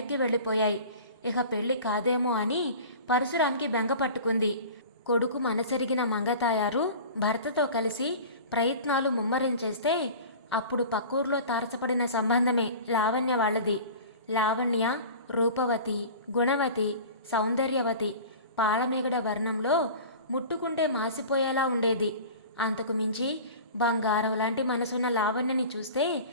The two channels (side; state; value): both; inverted; correlation -0.38